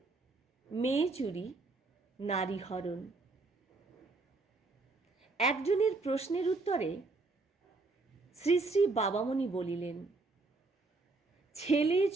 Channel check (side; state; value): left; quieter; 3.5 dB